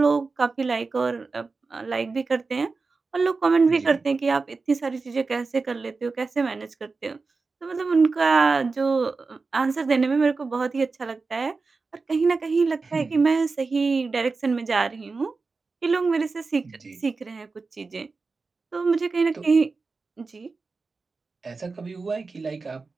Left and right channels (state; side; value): quieter; left; 4.2 dB